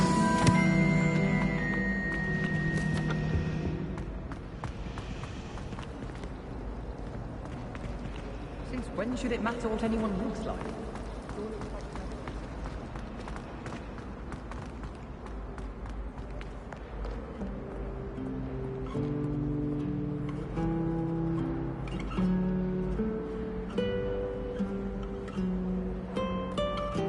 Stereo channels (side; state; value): both; identical; correlation 1.00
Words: Since when should it matter what anyone looks like?